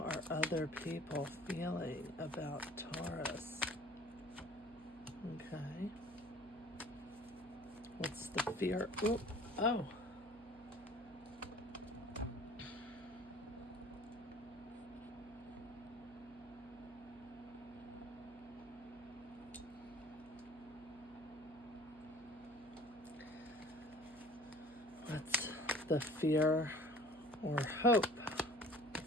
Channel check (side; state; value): right; noise; hum, 24 dB below the sound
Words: other people feeling about Taurus? Okay. What's the fear? Ooh, oh. What's the fear or hope